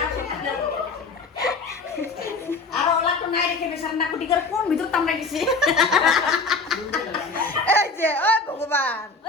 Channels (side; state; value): right; quieter; 3.9 dB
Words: আর ওলা তো নাই রেখে সান্না কুটি করে কোন ভিতর তামড়া গেছে এই যে ও ভগবান